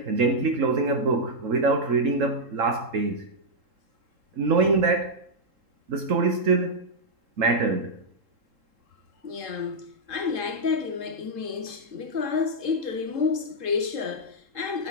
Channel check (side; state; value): left; late; 3.7 ms